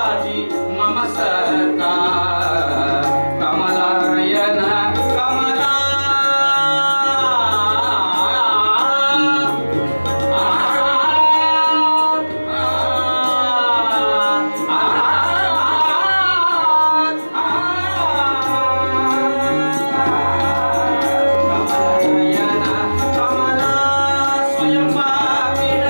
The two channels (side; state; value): both; inverted; correlation -1.00